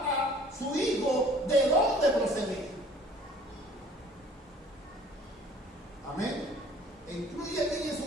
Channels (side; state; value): both; normal; correlation 0.52